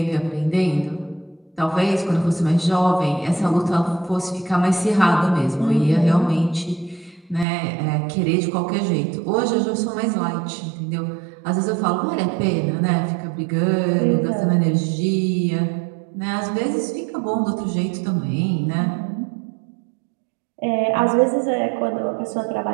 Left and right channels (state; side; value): drops out; left; at 7.5 s